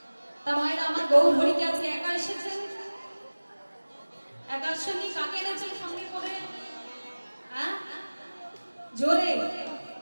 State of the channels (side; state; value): both; inverted; correlation -1.00